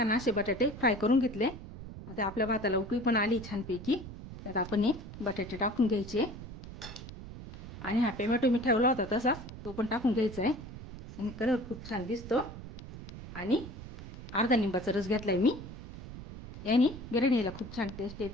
असे बटाटे फ्राय करून घेतले. आता आपल्या भाताला उकळी पण आली छानपैकी. त्यात आपण हे बटाटे टाकून घ्यायचे आणि हा टोमॅटो मी ठेवला होता तसाच तो पण टाकून घ्यायचा आहे. आणि कलर खूप छान दिसतो. आणि अर्धा लिंबाचा रस घेतलाय मी. याने बिर्याणीला खूप छान टेस्ट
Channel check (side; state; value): right; noise; rumble, 12 dB below the sound